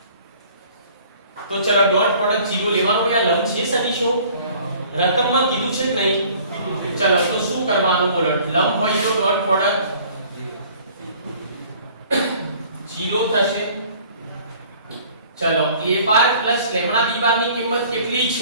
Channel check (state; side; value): inverted; both; correlation -0.52